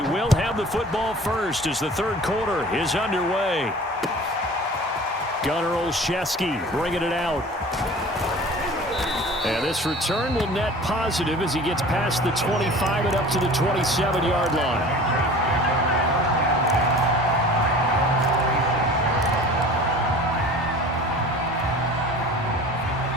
will have the football first as the third quarter is underway. Gunnar Olszewski bringing it out. And this return will net positive as he gets past the 25 and up to the 27-yard line.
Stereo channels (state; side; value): normal; both; correlation 0.42